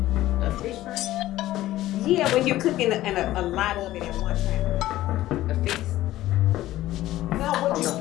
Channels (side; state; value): right; quieter; 15.2 dB